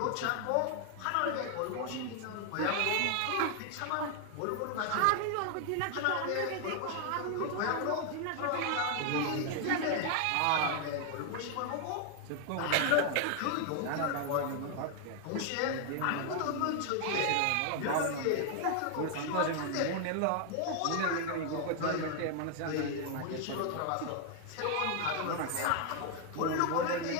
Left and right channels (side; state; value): both; different; correlation 0.00